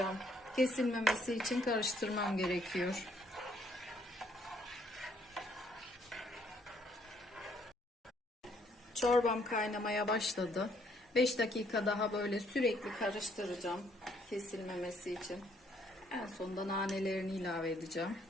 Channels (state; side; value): normal; both; correlation 0.67